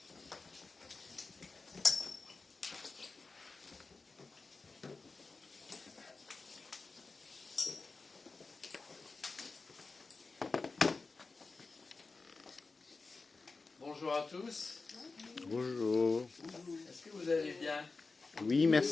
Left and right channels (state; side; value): quieter; right; 4.0 dB